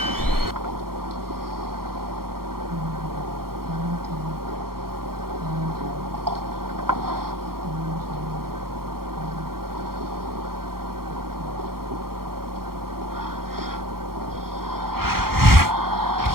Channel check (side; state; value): left; late; 0.93 ms